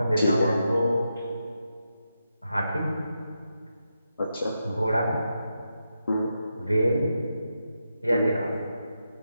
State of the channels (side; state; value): both; inverted; correlation -0.86